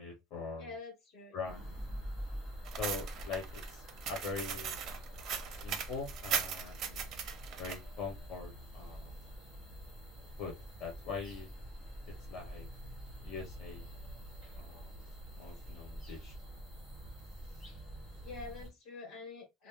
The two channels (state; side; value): normal; both; correlation 0.44